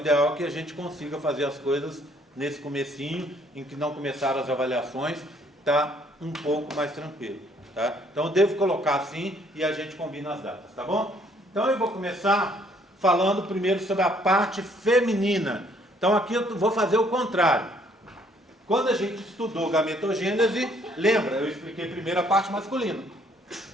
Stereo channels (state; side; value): normal; both; correlation 0.64